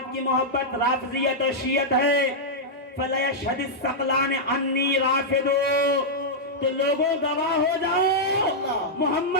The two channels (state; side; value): normal; both; correlation -0.07